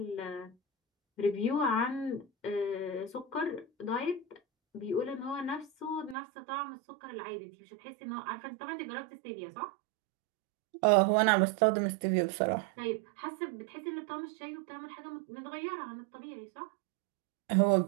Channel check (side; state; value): left; drops out; at 6.2 s